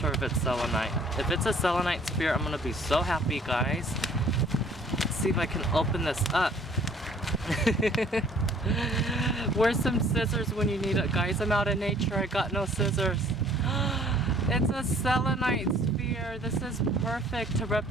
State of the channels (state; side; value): normal; both; correlation 0.55